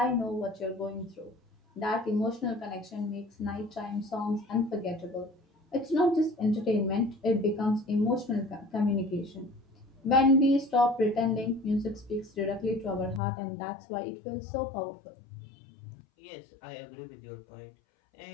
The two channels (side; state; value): right; drops out; at 13.2 s